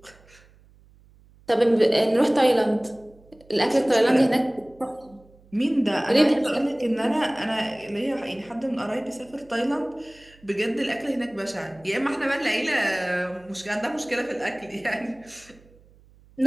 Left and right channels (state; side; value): noise; right; hum, 28 dB below the sound